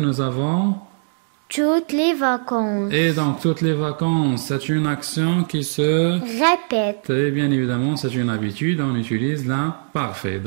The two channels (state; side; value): silent; left; digital silence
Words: avons... Toutes les vacances. Et donc toutes les vacances, c'est une action qui se... Répète. Et bien évidemment, c'est une habitude, on utilise l'imparfait.